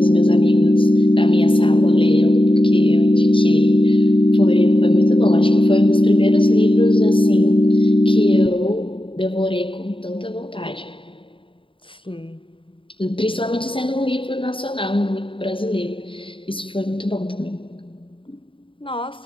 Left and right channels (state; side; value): late; right; 0.25 ms